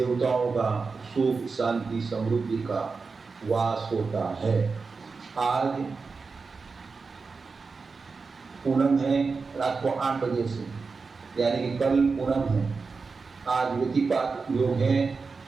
का सुख, शांति, समृद्धि का वास होता है। आज पूनम है, रात को 8 बजे से, यानी कि कल पूनम है। आज व्यतिपात योग है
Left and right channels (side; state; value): left; quieter; 4.6 dB